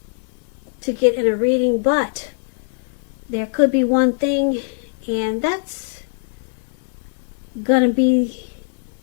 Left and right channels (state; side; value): silent; right; digital silence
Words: to get in a reading, but there could be one thing, and that's going to be